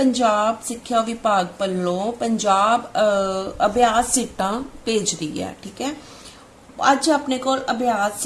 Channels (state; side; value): identical; both; correlation 1.00